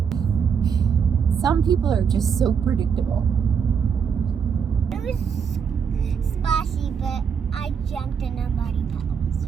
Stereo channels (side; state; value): left; quieter; 6.9 dB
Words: Some people are just so predictable. It was splashy, but I jumped in a muddy